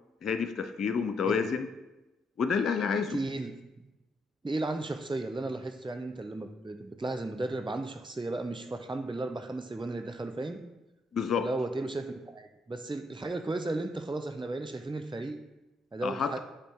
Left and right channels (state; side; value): normal; both; correlation 0.76